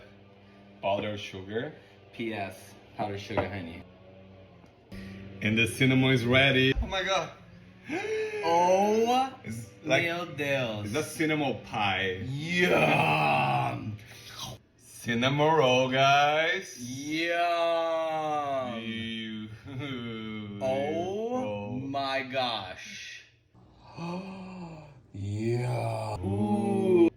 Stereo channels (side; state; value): both; identical; correlation 1.00